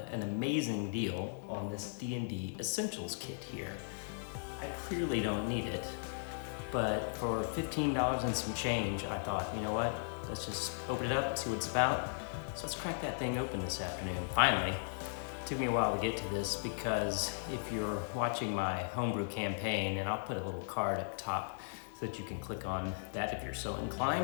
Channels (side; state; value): right; silent; 53 dB below the other